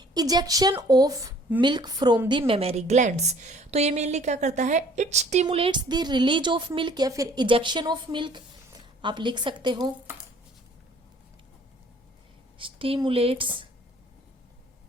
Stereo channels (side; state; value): both; normal; correlation 0.55